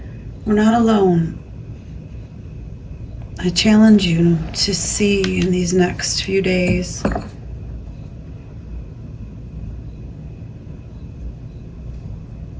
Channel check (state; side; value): identical; both; correlation 1.00